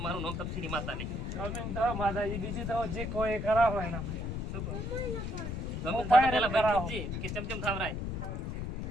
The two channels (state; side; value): noise; left; rumble, 3 dB below the sound